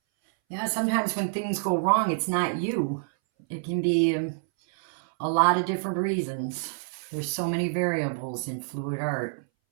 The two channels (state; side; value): silent; left; 60 dB below the other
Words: Yeah, sometimes when things go wrong, it's not you. It can be a lot of different reasons. There's so many variables in fluid art.